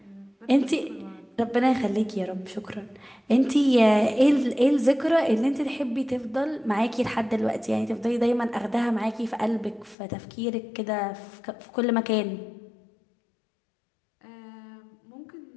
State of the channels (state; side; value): drops out; right; at 10.0 s